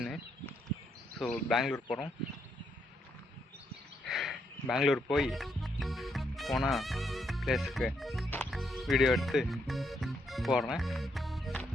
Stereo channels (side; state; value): both; normal; correlation 0.77